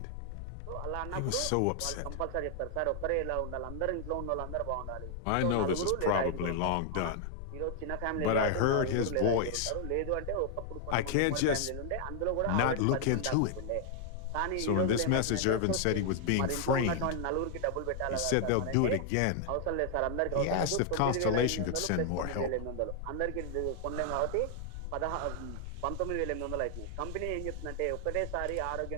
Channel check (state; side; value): different; both; correlation 0.00